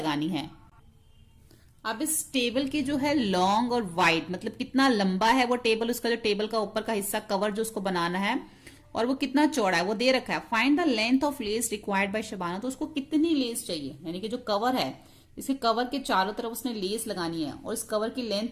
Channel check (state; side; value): identical; both; correlation 1.00